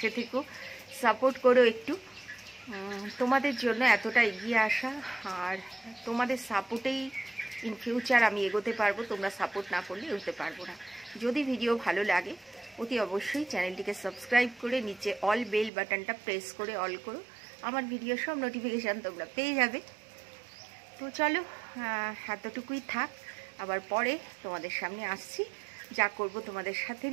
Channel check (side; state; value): left; drops out; at 15.7 s